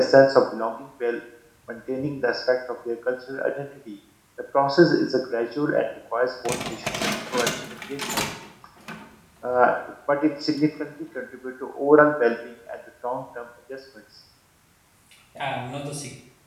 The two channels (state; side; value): identical; both; correlation 1.00